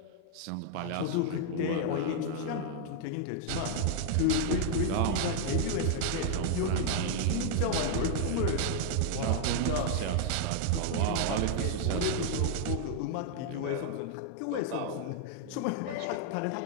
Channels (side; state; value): both; different; correlation 0.00